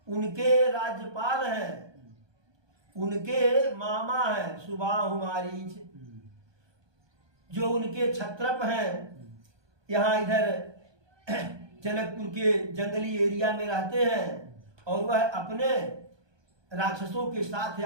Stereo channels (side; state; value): left; late; 1.2 ms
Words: उनके राज्यपाल हैं, उनके मामा हैं सुबाहु मारीच, जो उनके छत्रप हैं, यहाँ इधर जनकपुर के जंगली एरिया में रहते हैं, और वह अपने राक्षसों के साथ